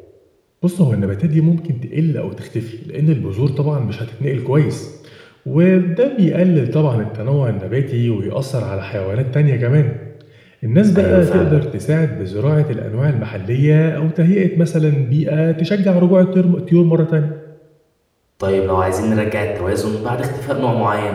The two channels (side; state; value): both; identical; correlation 1.00